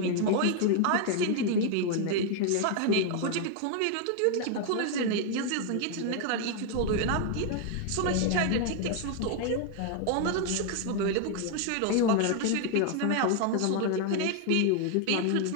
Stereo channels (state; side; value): different; both; correlation 0.00